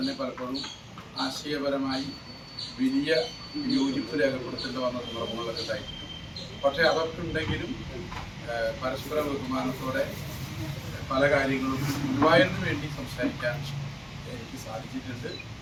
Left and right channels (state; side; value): identical; both; correlation 1.00